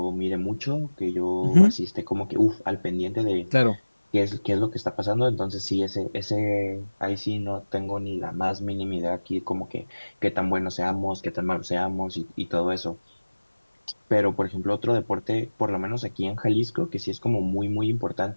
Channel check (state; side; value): inverted; both; correlation -1.00